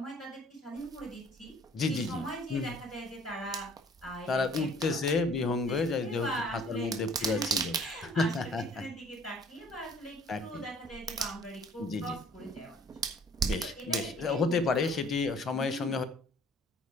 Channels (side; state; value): both; normal; correlation 0.55